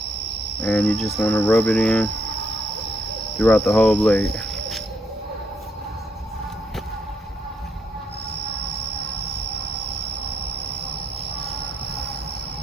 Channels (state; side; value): normal; both; correlation 0.74